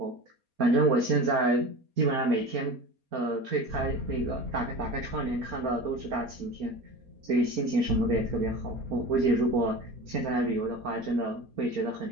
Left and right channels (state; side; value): late; left; 4.2 ms